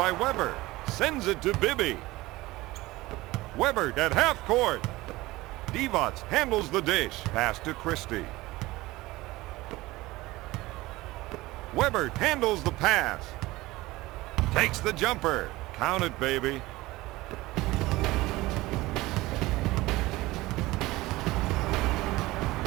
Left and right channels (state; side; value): quieter; left; 19.4 dB